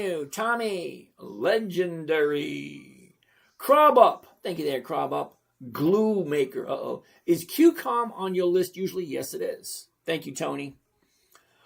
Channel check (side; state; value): both; identical; correlation 1.00